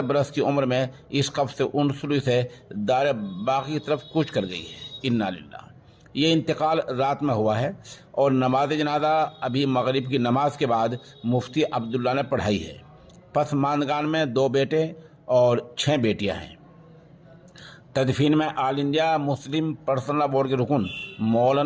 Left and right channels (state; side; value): identical; both; correlation 1.00